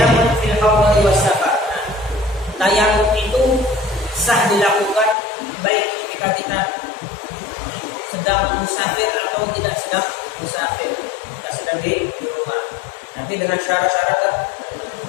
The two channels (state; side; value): drops out; right; at 5.2 s